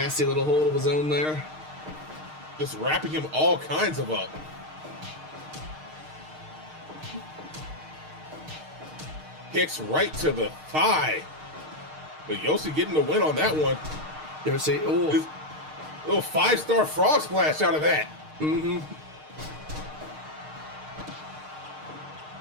little hold of his own there. Just wrapping him all kinds of up. Kicks right to the thigh. But Yoshi getting the win on that one. Yoshi, oh. Little 5-star frog splash out of that. Mm-hmm.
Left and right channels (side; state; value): left; late; 6.5 ms